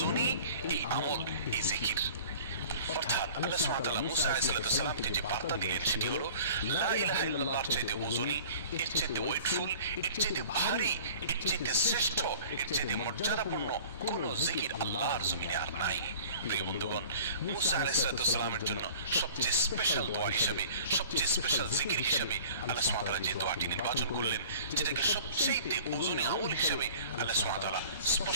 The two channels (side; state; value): both; inverted; correlation -0.45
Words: এই আমল, এই জিকির। অর্থাৎ আল্লাহ সুবহানাহু ওয়া তাআলা মুসা আলাইহিস সালামকে যে বার্তা দিলেন সেটি হলো লা ইলাহা ইল্লাল্লাহর চাইতে ওজনী, এর চাইতে ওয়েটফুল, এর চাইতে ভারী, এর চাইতে শ্রেষ্ঠ, এর চাইতে মর্যাদাপূর্ণ কোন জিকির আল্লাহর জমিনে আর নাই। প্রিয় বন্ধুগণ, মুসা আলাইহিস সালামের জন্য সবচেয়ে স্পেশাল দোয়া হিসাবে, সবচেয়ে স্পেশাল জিকির হিসাবে আল্লাহ সুবহানাহু ওয়া তাআলা যে দোয়াটি নির্বাচন করলেন, যেটাকে সবচেয়ে ওজনী আমল হিসাবে আল্লাহ সুবহানাহু ওয়া তাআলা